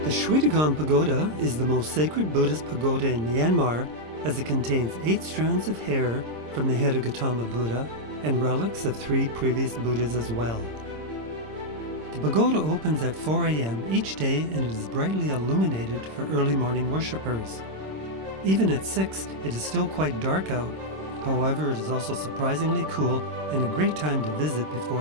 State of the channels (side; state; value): left; late; 26 ms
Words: Shwedagon Pagoda is the most sacred Buddhist pagoda in Myanmar, as it contains 8 strands of hair from the head of Gautama Buddha and relics of 3 previous Buddhas as well. The pagoda opens at 4 a.m. each day and it is brightly illuminated for early morning worshippers. Even at 6, it is still quite dark out. However, it is also surprisingly cool and a great time to visit